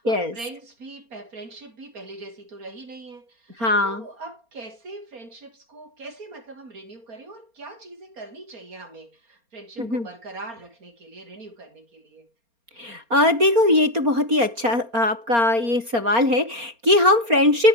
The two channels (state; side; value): late; left; 4.3 ms